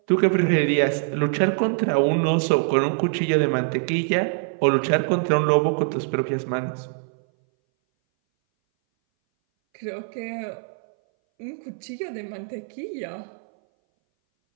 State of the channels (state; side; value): silent; left; 60 dB below the other